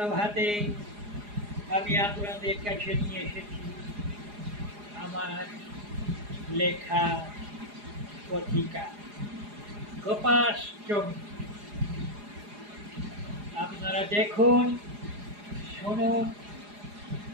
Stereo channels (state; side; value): late; left; 4.8 ms